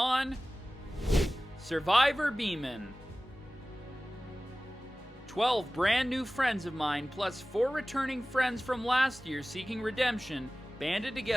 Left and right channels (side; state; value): both; normal; correlation 0.97